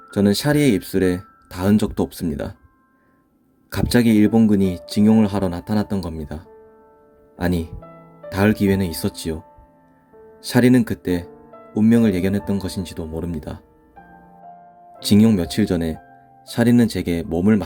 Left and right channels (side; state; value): both; identical; correlation 1.00